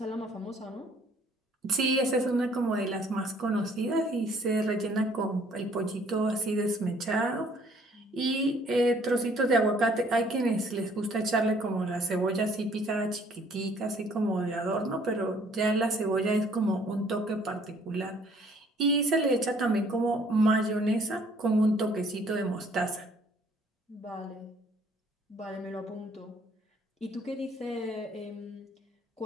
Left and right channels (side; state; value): both; normal; correlation 0.60